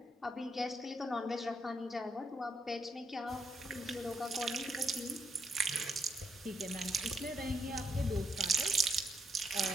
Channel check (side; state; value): both; normal; correlation 0.76